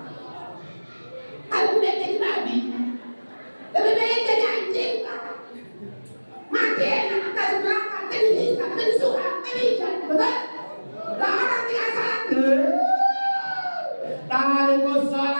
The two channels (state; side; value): inverted; both; correlation -1.00